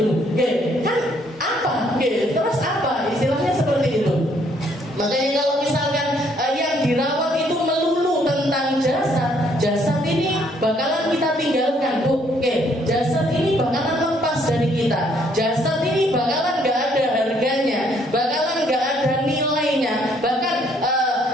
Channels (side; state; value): both; normal; correlation 0.67